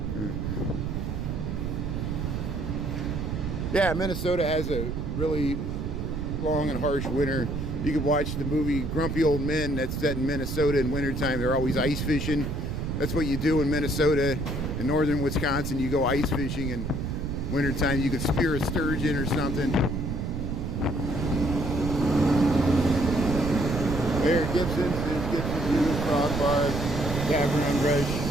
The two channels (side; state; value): right; noise; rumble, 3 dB below the sound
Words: Yeah, Minnesota has a really long and harsh winter. You can watch the movie Grumpy Old Men that's set in Minnesota in wintertime. They're always ice fishing. That's what you do in Minnesota. In northern Wisconsin, you go ice fishing in wintertime. You could spear a sturgeon or something. There, Gibson's News, Frog Bar, Tavern on Rush,